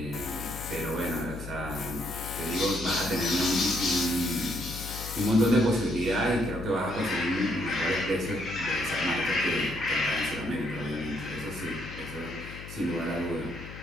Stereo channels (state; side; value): noise; left; hum, 12 dB below the sound